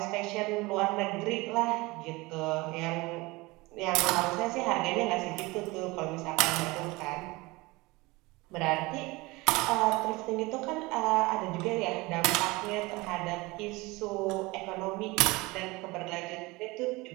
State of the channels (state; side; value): quieter; left; 22.7 dB